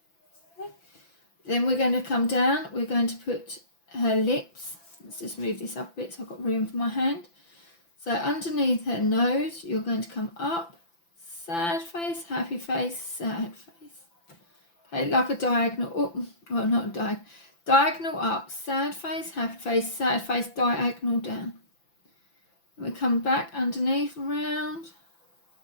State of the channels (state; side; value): late; right; 5.9 ms